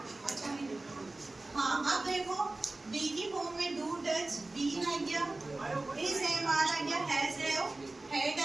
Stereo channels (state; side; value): quieter; left; 3.0 dB